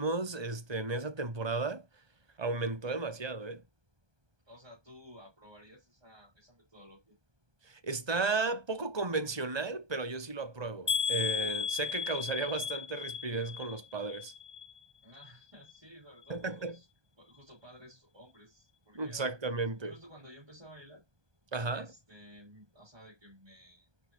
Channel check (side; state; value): left; late; 1.2 ms